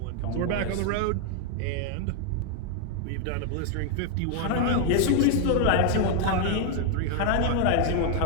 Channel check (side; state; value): both; different; correlation 0.00